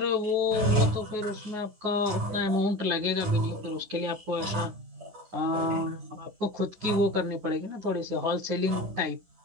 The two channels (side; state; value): left; late; 10 ms